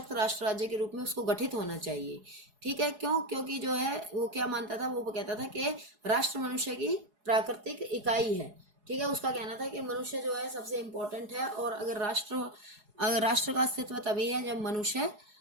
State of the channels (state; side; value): late; left; 4.8 ms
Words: राष्ट्र राज्य के रूप में उसको गठित होना चाहिए। ठीक है, क्यों? क्योंकि जो है वो क्या मानता था, वो कहता था कि राष्ट्र मनुष्य की प्राकृतिक इकाई है। ठीक है, उसका कहना था कि मनुष्य जो है सबसे इम्पोर्टेंट है और अगर राष्ट्र का अस्तित्व तभी है जब मनुष्य